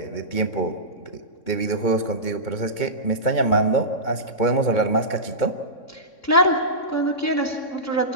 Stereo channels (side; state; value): right; late; 3.6 ms